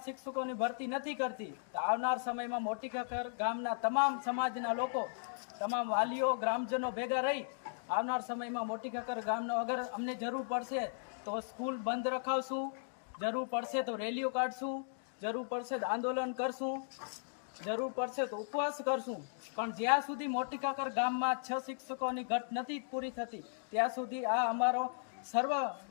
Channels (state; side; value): silent; right; digital silence